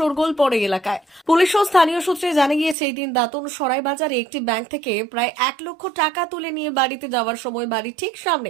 পড়ে এলাকায়। পুলিশ ও স্থানীয় সূত্রে জানা গিয়েছে, এই দিন দাঁতন সরাই বাজারে একটি ব্যাংক থেকে প্রায় 1 লক্ষ টাকা তুলে নিয়ে বাড়িতে যাওয়ার সময় বাড়ির ঠিক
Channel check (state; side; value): drops out; left; at 2.8 s